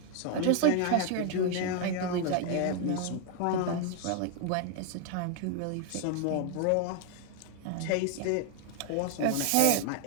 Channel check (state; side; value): different; both; correlation 0.00